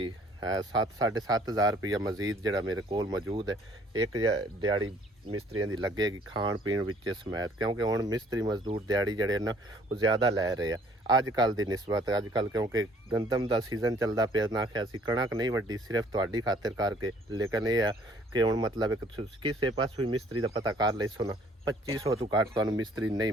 7-7,500 ਰੁਪਇਆ ਮਜ਼ੀਦ ਜਿਹੜਾ ਮੇਰੇ ਕੋਲ ਮੌਜੂਦ ਹੈ। ਇੱਕ ਦਿਹਾੜੀ ਮਿਸਤਰੀਆਂ ਦੀ ਲੱਗੇਗੀ ਖਾਣ ਪੀਣ ਵਿੱਚ ਸਮੇਤ, ਕਿਉਂਕਿ ਹੁਣ ਮਿਸਤਰੀ ਮਜ਼ਦੂਰ ਦਿਹਾੜੀ ਜਿਹੜੇ ਨਾ ਉਹ ਜ਼ਿਆਦਾ ਲੈ ਰਹੇ ਆ ਅੱਜ ਕੱਲ੍ਹ ਦੀ ਨਿਸਬਤ। ਅੱਜ ਕੱਲ੍ਹ ਕਿਉਂਕਿ ਗੰਦਮ ਦਾ ਸੀਜ਼ਨ ਚੱਲਦਾ ਪਿਆ, ਨਾ ਕਿ ਅਸੀਂ ਕਣਕ ਨਹੀਂ ਵੱਢੀ ਸਿਰਫ ਤੁਹਾਡੀ ਖਾਤਰ ਕਰਕੇ, ਲੇਕਿਨ ਇਹ ਆ ਕਿ ਹੁਣ ਮਤਲਬ ਇੱਕ ਕਿਸੇ ਪਾਸੋਂ ਵੀ ਮਿਸਤਰੀ ਦਾ ਪਤਾ ਕਰ ਲਈ ਸੋ ਨਾ 2,500 ਤੋਂ ਘੱਟ ਤੁਹਾਨੂੰ ਮਿਸਤਰੀ ਨਹੀਂ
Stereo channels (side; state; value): both; normal; correlation 0.59